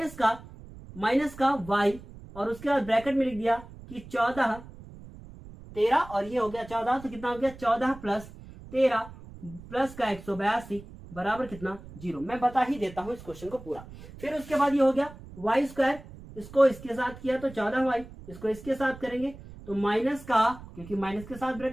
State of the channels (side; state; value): right; noise; rumble, 17 dB below the sound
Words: माइनस का y और उसके बाद ब्रैकेट में लिख दिया कि 14 13 और ये हो गया 14, तो कितना हो गया 14 प्लस 13 प्लस का 182 बराबर कितना 0। मैं बता ही देता हूं इस क्वेश्चन को पूरा। फिर उसके बाद ये हो गया वाई स्क्वायर, इसको इसके साथ किया तो 14y, इसको इसके साथ करेंगे तो माइनस का, क्योंकि माइनस के साथ